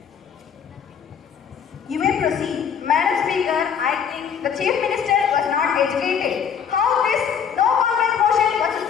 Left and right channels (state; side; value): quieter; right; 7.5 dB